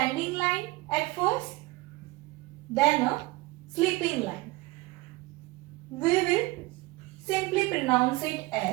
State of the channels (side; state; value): left; quieter; 21.5 dB